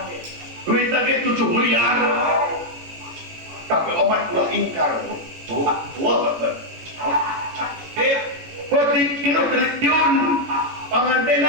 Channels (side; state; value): left; late; 18 ms